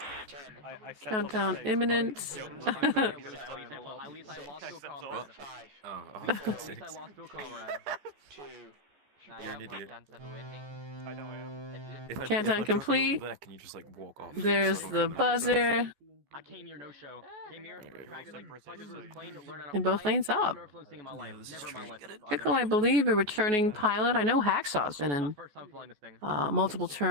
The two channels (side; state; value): left; late; 14 ms